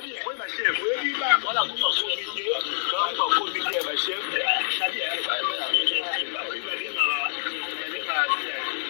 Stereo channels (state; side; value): silent; right; 61 dB below the other